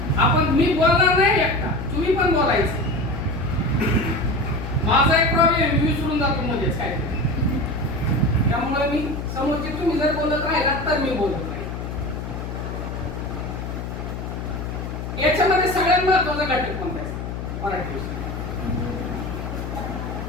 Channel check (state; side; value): noise; left; hum, 6 dB below the sound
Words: आपण मी बोलणार नाही एकटा, तुम्ही पण बोलायचं. माझा एक प्रॉब्लेम मी विसरून जातो मध्येच काय, त्यामुळे मी समोरचे तुम्ही जर बोलत राहिलात तर मी बोलत नाही. याच्यामध्ये सगळ्यात महत्वाचा घटक कोणता आहे मराठी विषय?